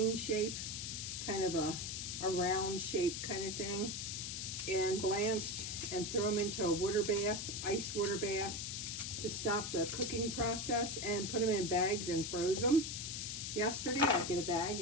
shape, kind of a round shape kind of thing, and blanched and throw them into a water bath, ice water bath, to stop the cooking process, and put them in bags and froze them. Yesterday, I'll get a bag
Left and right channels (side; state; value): left; noise; hiss, 4 dB below the sound